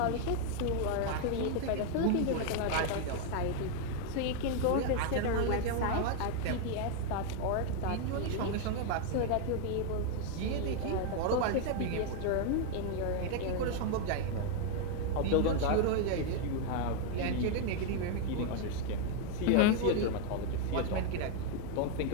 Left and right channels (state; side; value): different; both; correlation 0.01